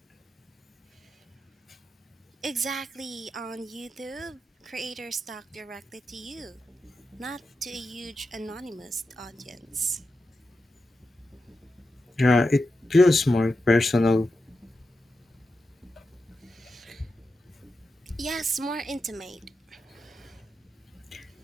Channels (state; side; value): normal; both; correlation 0.89